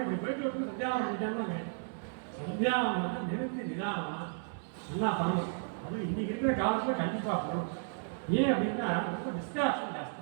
இப்படி போயிட்டு விட்டு சந்தியாவனம் பண்ணிட்டேன்னு சந்தியாவனத்தை நிறுத்தி நிதானமாக நல்லா பண்ணணும். அதுவும் இன்றைக்கி இருக்கிற காலத்தில் கண்டிப்பாக பண்ணணும். ஏன் அப்படின்னா ரொம்ப டிஸ்ட்ராக்ஷன் ஜாஸ்தி.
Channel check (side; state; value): left; silent; digital silence